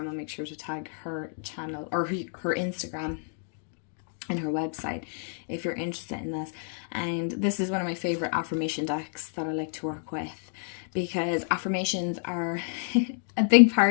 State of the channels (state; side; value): silent; right; digital silence